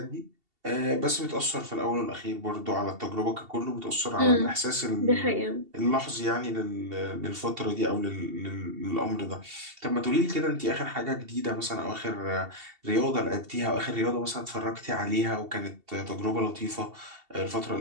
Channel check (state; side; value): late; left; 2.7 ms